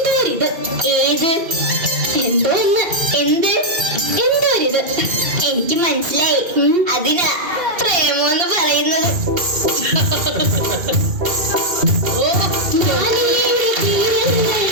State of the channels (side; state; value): left; late; 2.8 ms